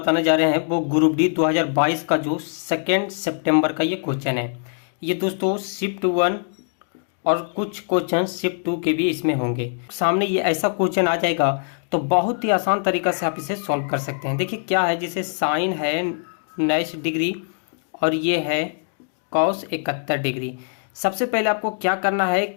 जा रहे हैं वो ग्रुप डी 2022 का जो 2 सितंबर का ये क्वेश्चन है। ये दोस्तों शिफ्ट 1 और कुछ क्वेश्चन शिफ्ट 2 के भी इसमें होंगे। सामने ये ऐसा क्वेश्चन आ जाएगा तो बहुत ही आसान तरीका से आप इसे सॉल्व कर सकते हैं। देखिए क्या है, जिसे साइन है 19 डिग्री और ये है कॉस 71 डिग्री। सबसे पहले आपको क्या करना है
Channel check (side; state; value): right; silent; digital silence